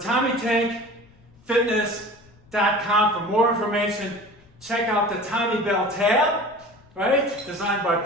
for more information. Check out the Tommy Bell tab, right? Designed by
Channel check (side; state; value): left; noise; rumble, 28 dB below the sound